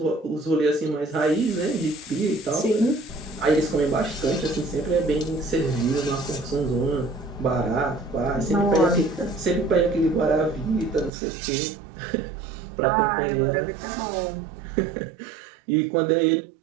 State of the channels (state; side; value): drops out; left; at 11.1 s